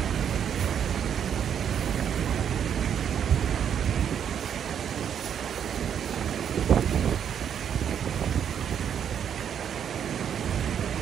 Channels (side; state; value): left; quieter; 8.6 dB